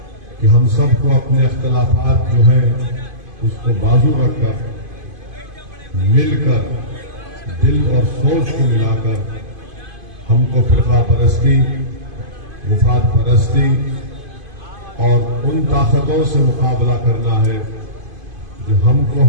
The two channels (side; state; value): left; late; 2.5 ms